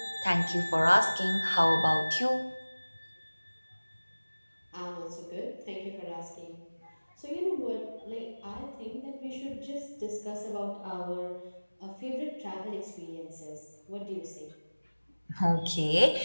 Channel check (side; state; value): both; inverted; correlation -1.00